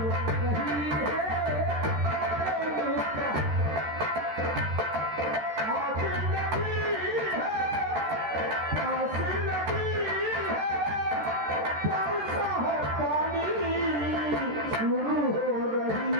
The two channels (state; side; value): late; left; 13 ms